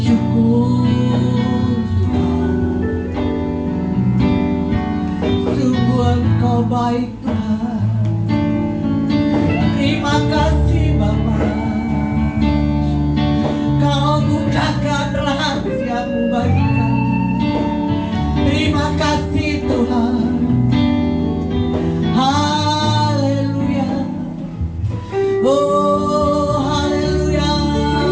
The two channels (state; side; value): identical; both; correlation 1.00